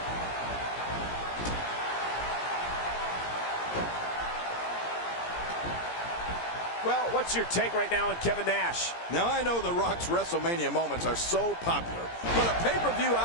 Well, what's your take right now on Kevin Nash? Now, I know The Rock's WrestleMania moments are so popular, but a pay-per-view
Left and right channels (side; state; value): right; late; 17 ms